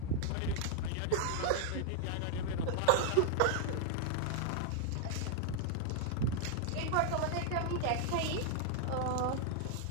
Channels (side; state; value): both; different; correlation 0.00